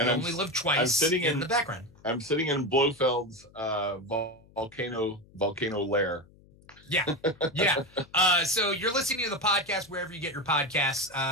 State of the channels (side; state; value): left; noise; hum, 26 dB below the sound